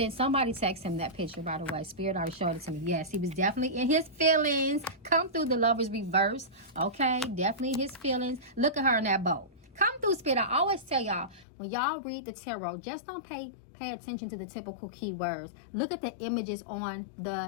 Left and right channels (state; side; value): drops out; right; at 11.5 s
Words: him that picture, by the way. Spirit already showed it to me. Yes, he was definitely in his feelings. Come through the Lover's reverse, okay? Definitely his feelings. Look at her in that boat. Come through, Spirit. I always tell y'all, when y'all read the tarot, just don't pay attention to the typical keywords. Look at the images on